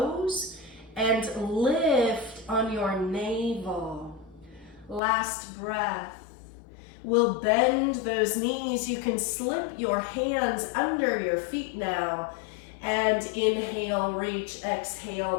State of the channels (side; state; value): right; drops out; at 5.0 s